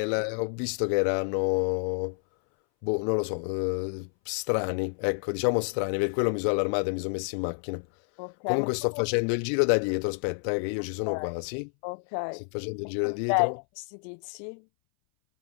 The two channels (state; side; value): silent; right; 59 dB below the other